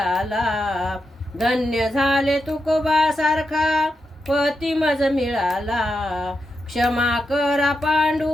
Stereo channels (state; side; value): normal; both; correlation 0.86